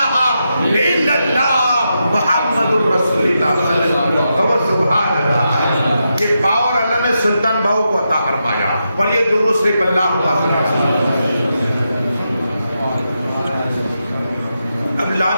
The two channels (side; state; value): both; inverted; correlation -0.86